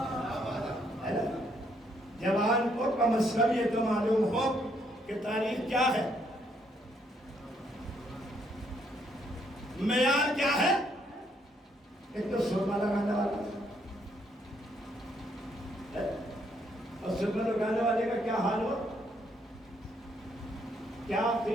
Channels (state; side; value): normal; both; correlation 0.71